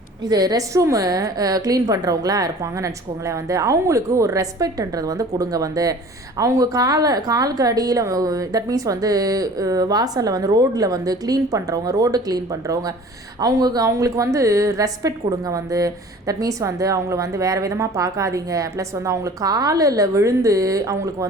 இது ரெஸ்ட் ரூமு க்ளீன் பண்ணுறவங்களாம் இருப்பாங்கன்னு வச்சுக்கோங்களேன் வந்து. அவங்களுக்கு ஒரு ரெஸ்பெக்ட்ன்றது வந்து கொடுங்க வந்து. அவங்க காலுக்கு அடியில் தட் மீன்ஸ் வந்து வாசலில் வந்து ரோட்டில் வந்து ரோடு க்ளீன் பண்ணுறவங்க அவங்களுக்கு வந்து ரெஸ்பெக்ட் கொடுங்க வந்து. தட் மீன்ஸ் வந்து அவங்கள வந்து வேறு விதமாக பார்க்காதீங்க. ப்ளஸ் வந்து அவங்களுக்கு காலில் விழுந்து அவங்களுக்கு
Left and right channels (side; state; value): both; normal; correlation 0.45